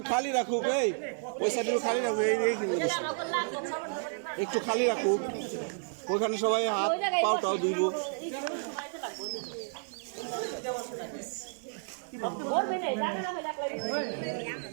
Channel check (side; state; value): left; silent; 57 dB below the other